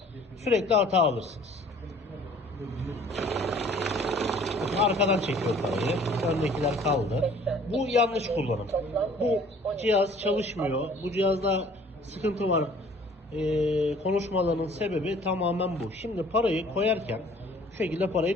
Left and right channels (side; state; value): both; normal; correlation 0.53